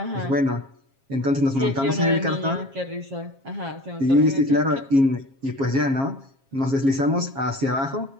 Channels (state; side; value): late; left; 7.4 ms